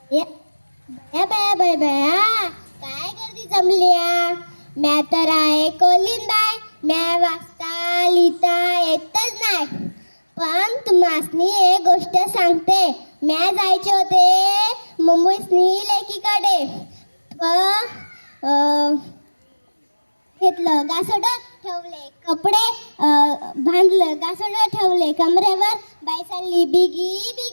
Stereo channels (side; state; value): both; inverted; correlation -1.00